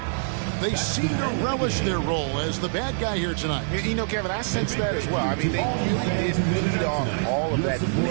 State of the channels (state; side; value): silent; left; 57 dB below the other